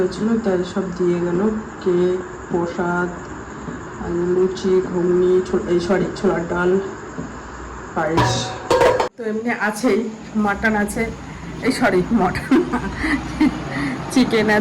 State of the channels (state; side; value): identical; both; correlation 1.00